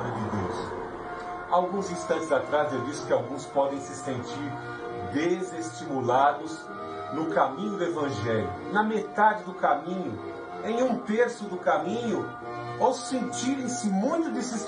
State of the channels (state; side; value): identical; both; correlation 1.00